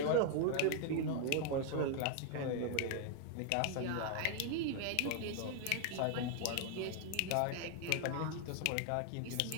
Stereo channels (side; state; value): both; different; correlation 0.00